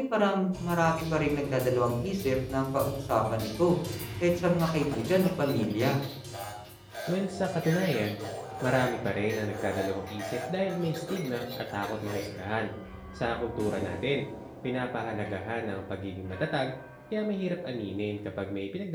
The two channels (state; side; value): identical; both; correlation 1.00